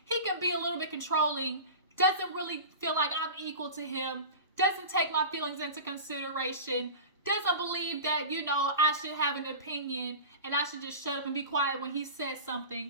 He can be a little bit controlling, doesn't really feel like I'm equal to him, doesn't take my feelings into consideration, doesn't believe that, I should have an opinion and I should just shut up and be quiet when he says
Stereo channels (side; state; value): both; inverted; correlation -0.32